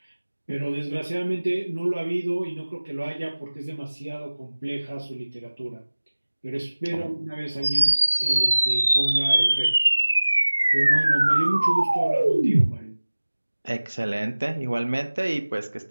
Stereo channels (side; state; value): both; inverted; correlation -1.00